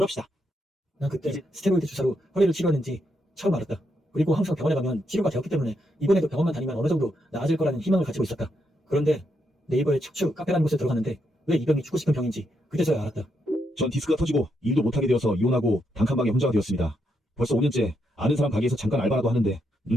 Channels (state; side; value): normal; both; correlation 0.80